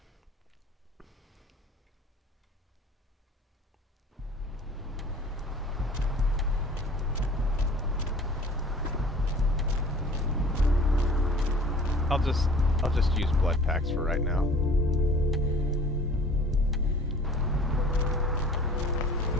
I'll just use blood packs for right now.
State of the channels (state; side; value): normal; both; correlation 0.47